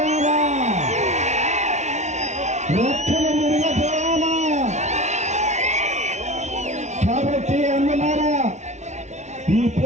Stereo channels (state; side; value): late; left; 0.33 ms